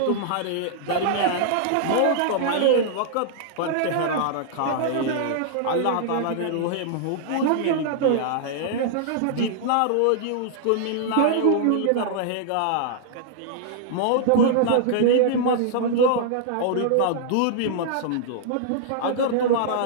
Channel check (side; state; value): both; different; correlation -0.01